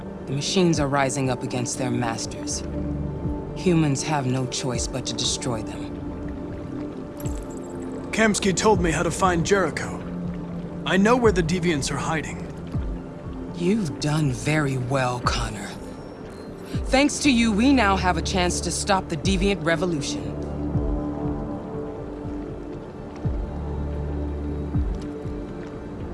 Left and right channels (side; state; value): both; identical; correlation 1.00